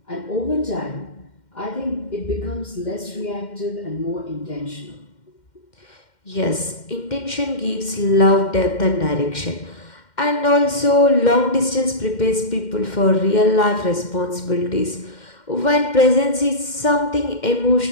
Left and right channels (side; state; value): right; late; 2.1 ms